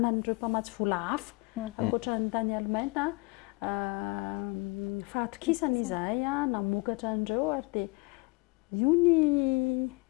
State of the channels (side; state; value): right; quieter; 27.3 dB